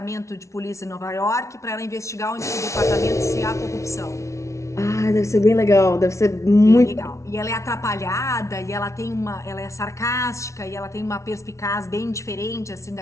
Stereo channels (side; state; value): right; late; 0.14 ms